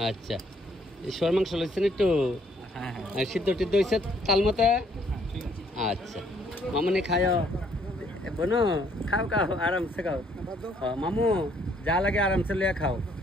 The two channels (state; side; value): normal; both; correlation 0.66